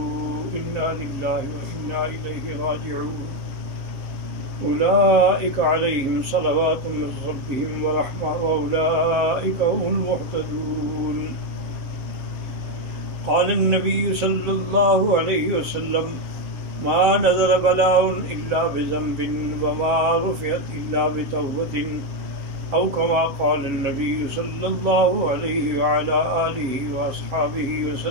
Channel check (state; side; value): late; left; 7.6 ms